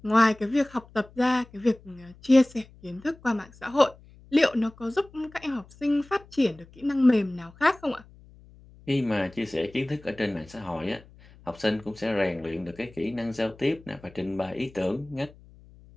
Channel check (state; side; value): noise; left; hum, 24 dB below the sound